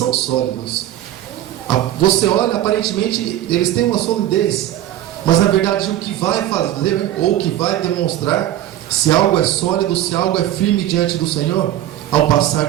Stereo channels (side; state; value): left; quieter; 12.9 dB